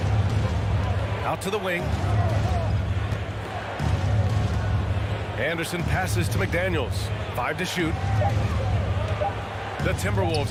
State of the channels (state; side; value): identical; both; correlation 1.00